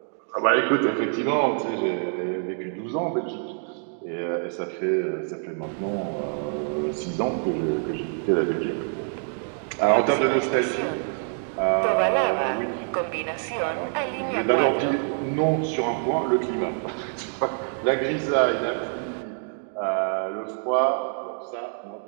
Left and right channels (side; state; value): left; silent; 61 dB below the other